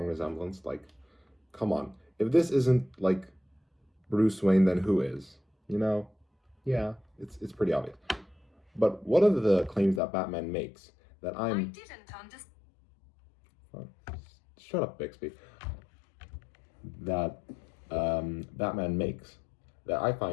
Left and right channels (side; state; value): right; drops out; at 10.0 s